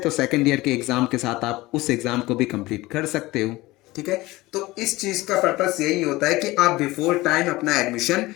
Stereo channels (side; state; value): right; quieter; 19.7 dB